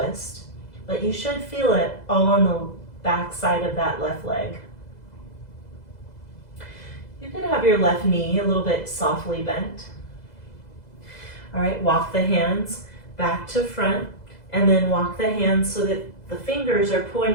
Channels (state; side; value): late; right; 2.0 ms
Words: but you should feel it all on the back side of that left leg. You can have your left knee a little bit softly bent. All right, walk the hands back to front, and then walk the hands so that the fingers are